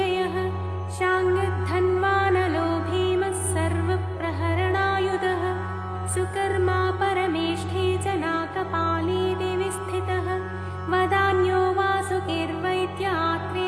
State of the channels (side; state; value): both; identical; correlation 1.00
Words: शाङ्गधन्वानलो भीमः सर्वप्रहरणायुधः सुकर्मा परमेष्ठी जनाकपाली दिवि स्थितः वदान्यो वासुकिर्वैद्य